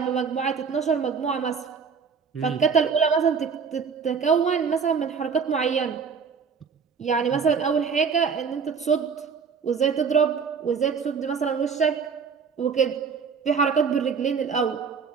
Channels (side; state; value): left; quieter; 6.0 dB